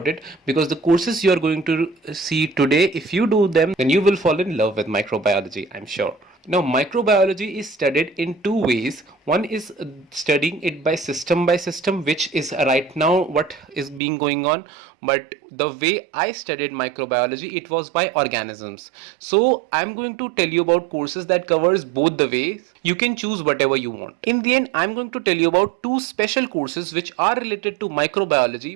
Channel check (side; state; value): left; drops out; at 14.0 s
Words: it because the courses you are going to see today, if you do them, then you will fall in love with microbiology, I'm sure. Now, microbiology is studied in two ways. One is studying it by system, which is right now what is being going on. But the way I studied microbiology, it was by organisms. So I'm going to tell you about courses that covers both the ways. You can choose whatever you want. In the end, I'm going to tell you about two special courses which are related to